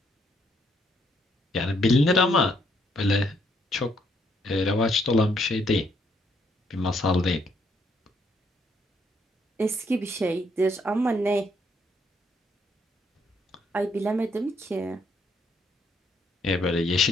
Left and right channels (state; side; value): normal; both; correlation 0.71